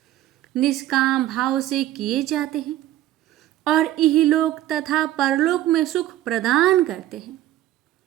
निष्काम भाव से किए जाते हैं और इहलोक तथा परलोक में सुख प्रदान करते हैं।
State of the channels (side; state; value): left; quieter; 14.0 dB